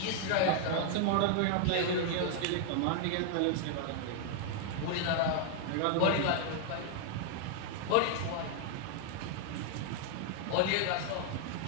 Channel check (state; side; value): different; both; correlation 0.00